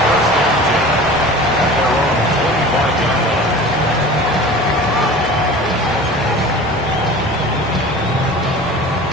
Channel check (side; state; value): both; normal; correlation 0.39